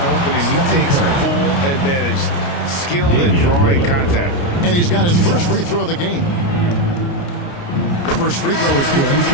opening, he takes full advantage. Skilled at drawing contact. And he's got his first free throw of the game. The first free throw is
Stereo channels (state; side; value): late; right; 29 ms